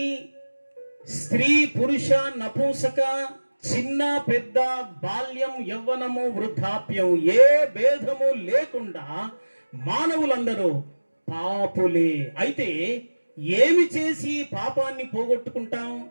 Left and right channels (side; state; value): both; inverted; correlation -1.00